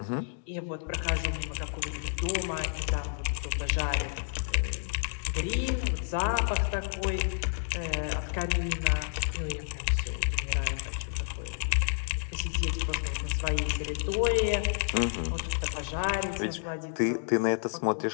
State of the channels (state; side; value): silent; right; digital silence